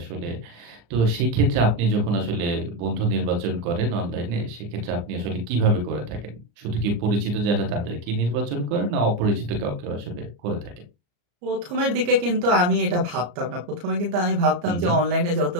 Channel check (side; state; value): left; late; 34 ms